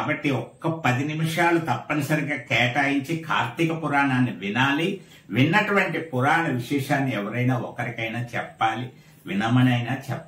ఒక్క 10 నిమిషాలు తప్పనిసరిగా కేటాయించి కార్తీక పురాణాన్ని వినాలి. విన్నటువంటి పురాణ విశేషాన్ని ఎవరైనా ఒకరికైనా చెప్పాలి, వినమనైనా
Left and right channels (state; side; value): identical; both; correlation 1.00